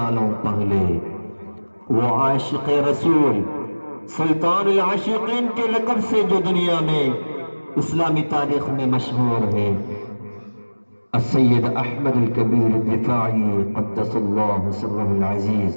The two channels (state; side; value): inverted; both; correlation -1.00